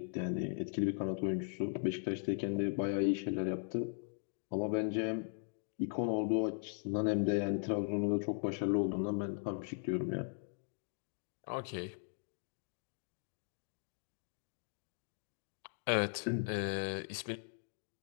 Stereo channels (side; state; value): right; silent; digital silence